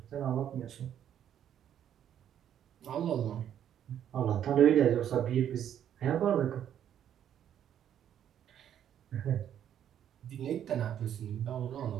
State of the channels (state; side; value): quieter; left; 10.0 dB